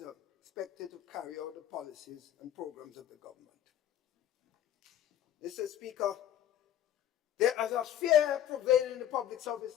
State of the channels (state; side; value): quieter; right; 11.1 dB